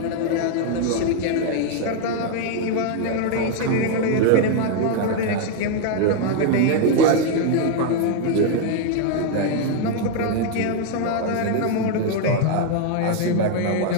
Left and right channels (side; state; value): both; different; correlation 0.00